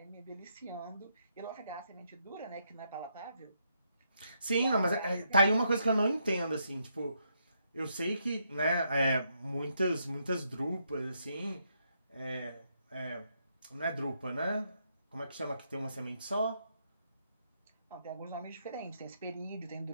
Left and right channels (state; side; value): inverted; both; correlation -0.77